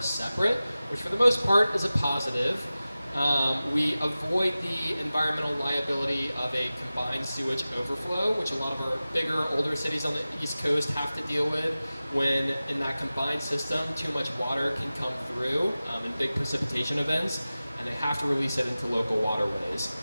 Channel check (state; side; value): inverted; both; correlation -0.96